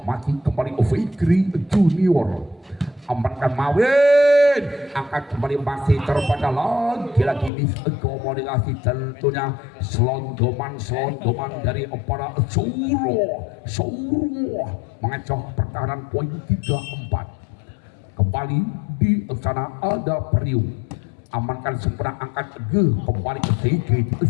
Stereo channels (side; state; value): right; drops out; at 7.5 s